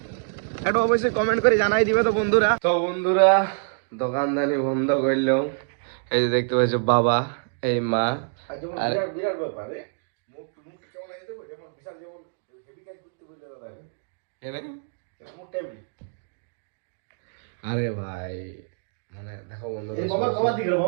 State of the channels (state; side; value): silent; left; digital silence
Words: একটু অবশ্যই কমেন্ট করে জানাই দিবে। তো বন্ধুরা দোকানদানি বন্ধ করলো। এই যে দেখতে পাচ্ছ বাবা, এই মা আর বিরাট ব্যাপার রে। আরে ভাই মানে দেখো বন্ধুরা